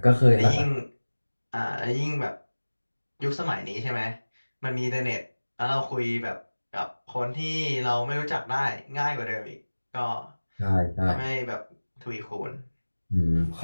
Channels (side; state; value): both; inverted; correlation -1.00